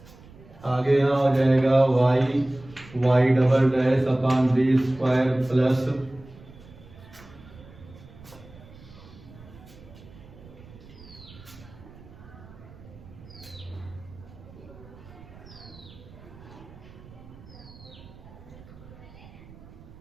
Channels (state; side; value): noise; right; rumble, 20 dB below the sound